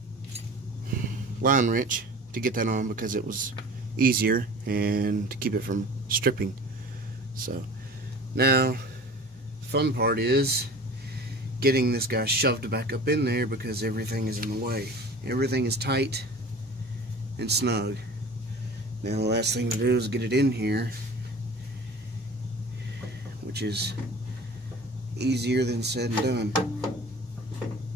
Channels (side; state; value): both; normal; correlation 0.41